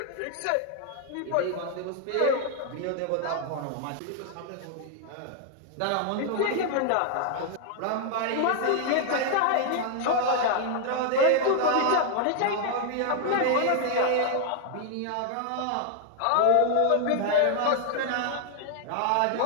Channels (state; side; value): different; both; correlation 0.00